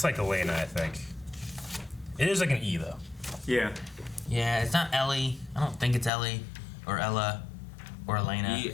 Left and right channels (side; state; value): right; drops out; at 6.1 s